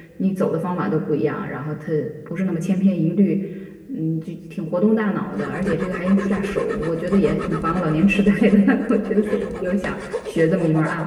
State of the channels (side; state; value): both; identical; correlation 1.00